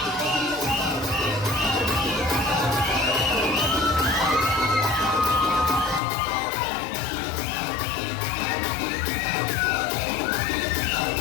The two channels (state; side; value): drops out; right; at 6.0 s